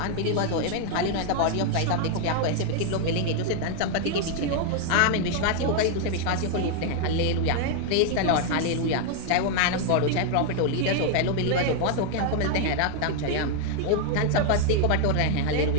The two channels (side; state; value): both; different; correlation 0.00